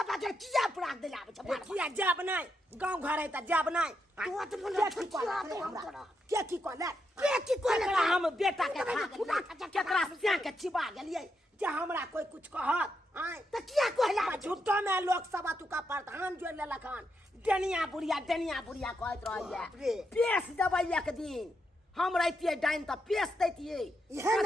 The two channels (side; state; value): both; normal; correlation 0.82